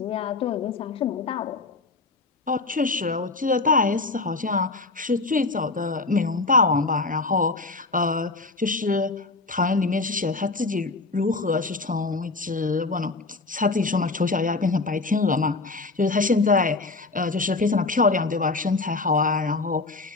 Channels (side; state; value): right; quieter; 3.6 dB